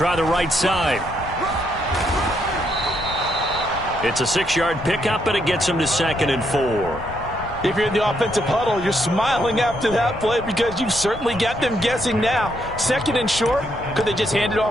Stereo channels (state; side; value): noise; left; rumble, 13 dB below the sound